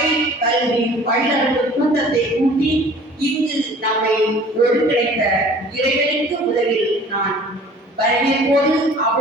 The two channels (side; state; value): both; normal; correlation 0.49